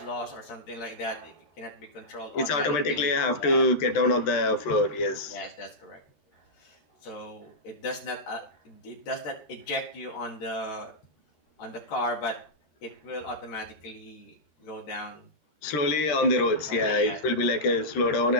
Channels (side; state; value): right; late; 13 ms